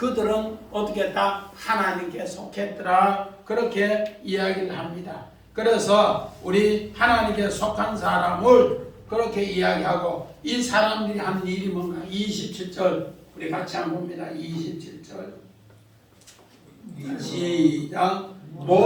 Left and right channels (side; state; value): both; identical; correlation 1.00